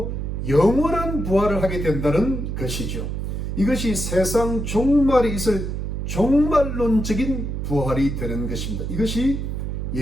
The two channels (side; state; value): right; noise; hum, 3 dB below the sound